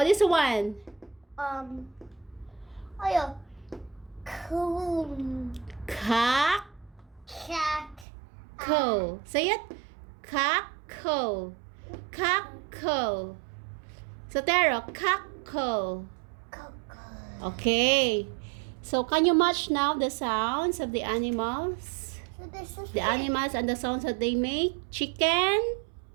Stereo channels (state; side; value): drops out; left; at 8.1 s